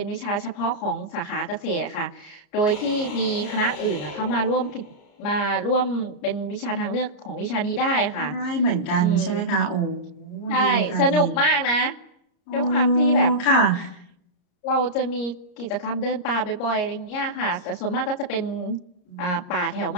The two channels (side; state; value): right; late; 33 ms